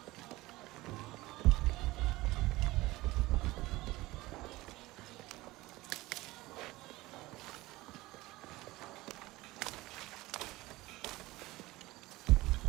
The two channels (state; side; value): quieter; left; 19.2 dB